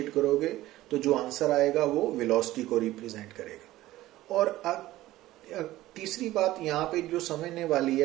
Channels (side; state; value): left; quieter; 16.1 dB